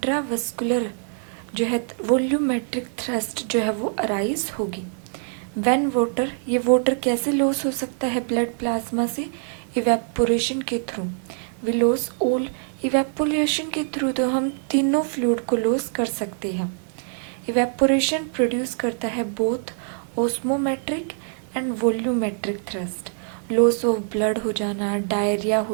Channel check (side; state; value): left; silent; digital silence